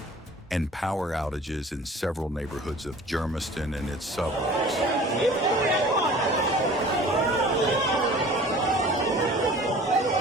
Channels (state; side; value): normal; both; correlation 0.45